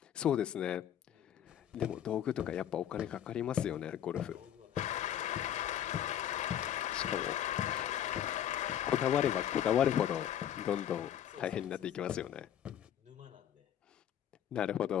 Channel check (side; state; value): right; quieter; 10.4 dB